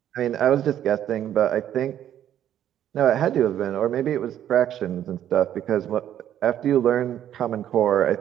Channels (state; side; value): quieter; left; 10.9 dB